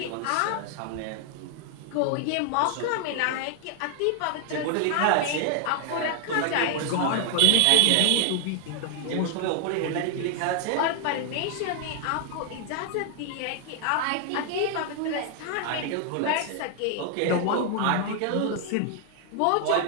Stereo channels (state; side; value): different; both; correlation 0.00